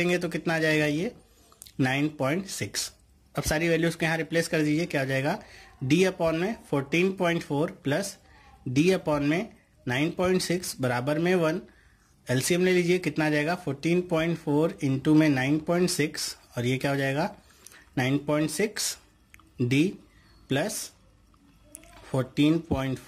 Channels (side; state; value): both; identical; correlation 1.00